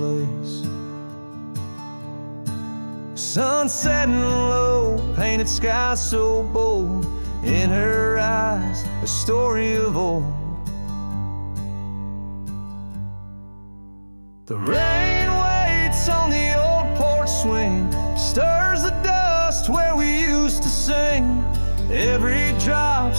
Sun setting low, painted sky so bold. In her eyes, a story of old. The rain waits on the old porch swing, stirs the dust where we used to sing. Every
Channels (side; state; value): both; inverted; correlation -1.00